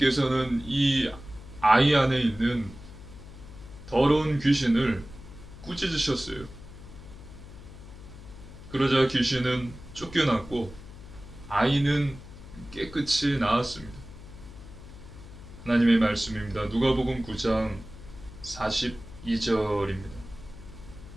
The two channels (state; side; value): noise; left; hum, 16 dB below the sound